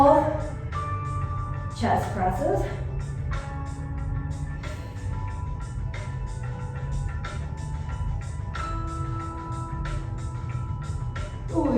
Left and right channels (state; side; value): identical; both; correlation 1.00